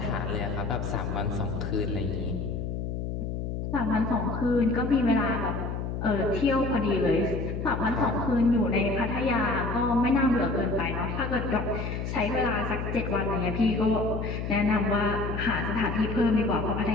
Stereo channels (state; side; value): noise; left; hum, 4 dB below the sound